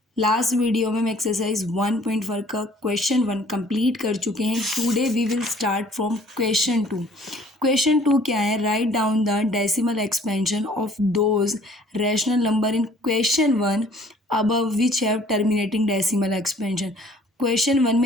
Last video में हम एक्सरसाइज 1.4 का क्वेश्चन 1 कंप्लीट कर चुके हैं। Today we will start from question 2। Question 2 क्या है? Write down the decimal expansion of those rational number in question 1 above which have terminating decimal expansion. Question 1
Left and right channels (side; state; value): both; normal; correlation 0.55